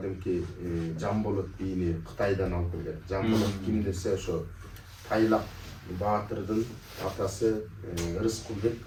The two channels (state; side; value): identical; both; correlation 1.00